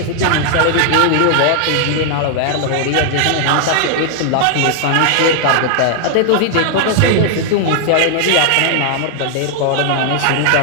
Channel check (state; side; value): different; both; correlation 0.00